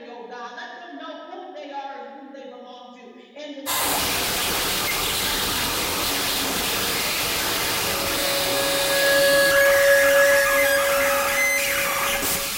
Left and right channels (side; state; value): both; identical; correlation 1.00